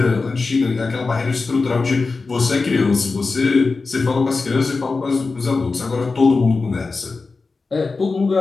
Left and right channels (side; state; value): right; quieter; 4.1 dB